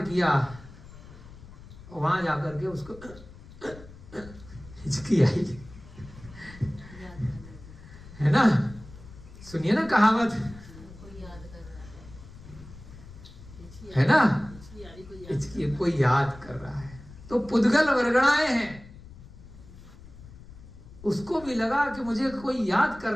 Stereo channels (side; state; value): left; noise; rumble, 18 dB below the sound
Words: किया, वहां जाकर के उसको हिचकी आई, है ना? सुनिए ना कहावत, है ना? हिचकी कोई याद कर रहा है, तो पुद्गल वर्गणाएं हैं। उसको भी लगा कि मुझे कोई याद कर